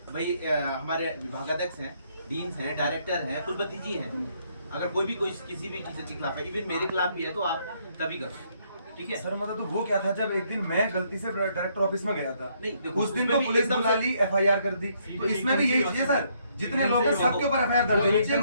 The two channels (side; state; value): both; inverted; correlation -0.71